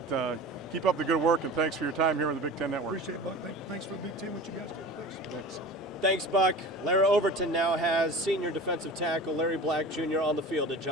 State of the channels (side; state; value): both; normal; correlation 0.36